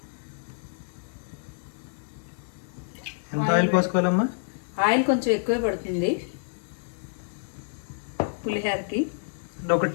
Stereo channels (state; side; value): silent; right; digital silence